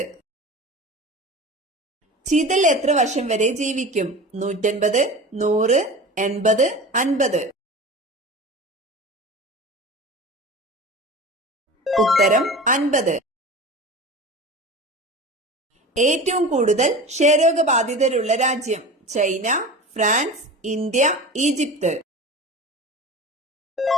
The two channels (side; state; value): both; normal; correlation 0.34